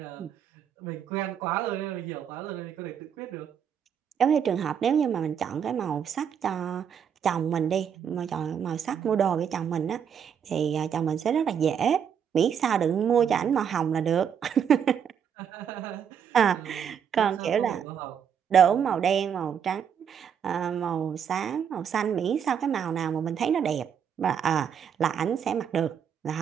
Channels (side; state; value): left; quieter; 7.9 dB